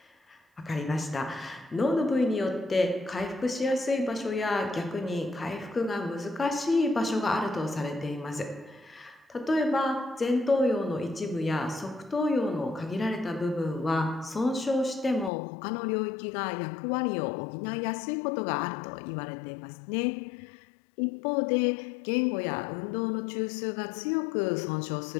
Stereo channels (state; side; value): drops out; right; at 15.3 s